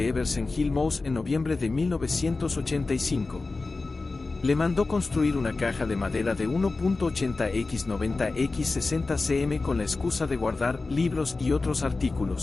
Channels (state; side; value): quieter; right; 3.6 dB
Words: Everson Hill Mouse en noviembre de 1985. Le mandó construir una caja de madera de 1.80 x 90 x 60 cm con la excusa de guardar libros y otros